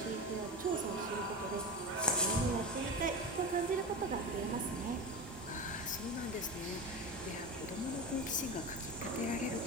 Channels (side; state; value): both; normal; correlation 0.23